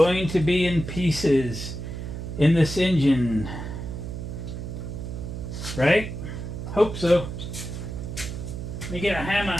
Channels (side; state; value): right; noise; hum, 7 dB below the sound